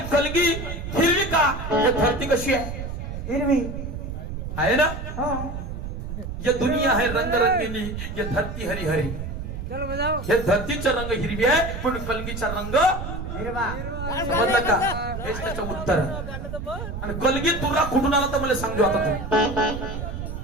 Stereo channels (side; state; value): right; noise; rumble, 7 dB below the sound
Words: कलगी हिरवी का हे धरती कशी आहे हिरवी आहे ना ये दुनिया है रंग रंगीनी ये धरती हरी हरी हे धरतीचा रंग हिरवी आहे पण कलगीचा रंग समजलं का हेच त्याचं उत्तर आणि कलगी तुला कुठून आला तर मला सांगतो आता तू